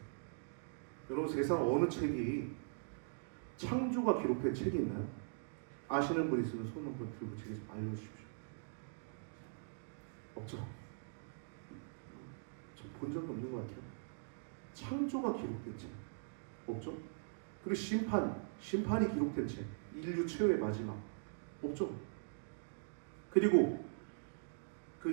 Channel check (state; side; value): silent; left; digital silence